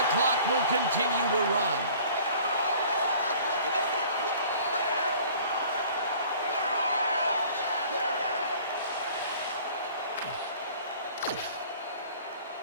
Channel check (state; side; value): inverted; both; correlation -0.49